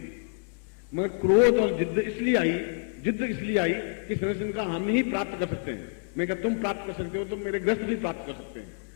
मगर क्रोध और जिद्द इसलिए आई कि संरक्षण का हम ही प्राप्त कर सकते हैं। मैं कहता तुम प्राप्त कर सकते हो तो मेरे ग्रस्त भी प्राप्त कर सकते हैं,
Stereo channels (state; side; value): silent; right; digital silence